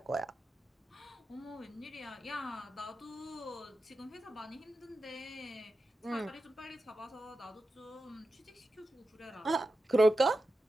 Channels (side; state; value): both; normal; correlation 0.90